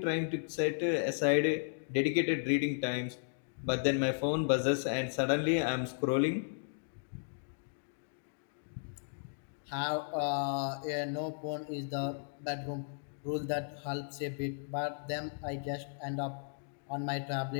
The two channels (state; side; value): silent; right; digital silence